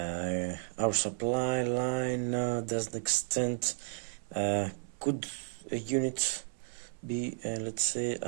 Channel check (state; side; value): silent; left; 56 dB below the other